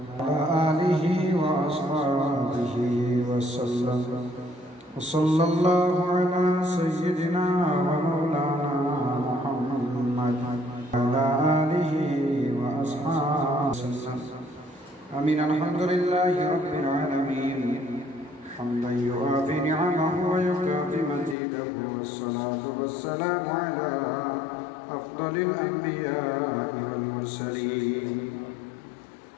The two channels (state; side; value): drops out; right; at 21.4 s